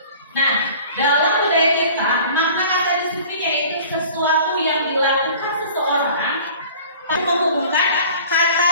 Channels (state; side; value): inverted; both; correlation -0.45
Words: Nah, dalam budaya